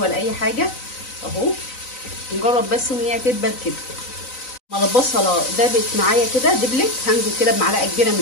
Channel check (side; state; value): right; late; 3.9 ms